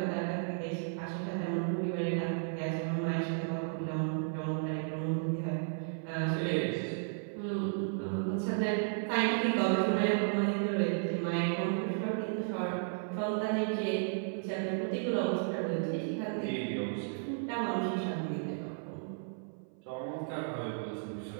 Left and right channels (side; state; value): left; silent; 55 dB below the other